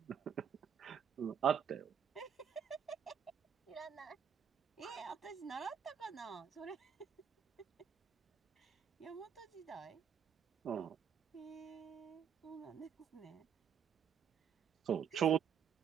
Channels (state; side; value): quieter; left; 7.9 dB